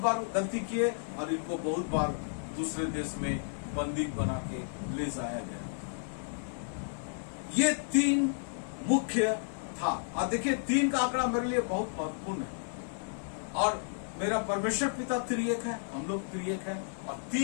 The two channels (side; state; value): right; silent; 56 dB below the other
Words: बार गलती किए और इनको बहुत बार दूसरे देश में बंदी बना के ले जाया गया। ये 3 मुख्य था। और देखिए 3 का आंकड़ा मेरे लिए बहुत महत्वपूर्ण है। और मेरा परमेश्वर पिता त्रिएक है, हम लोग त्रिएक है, और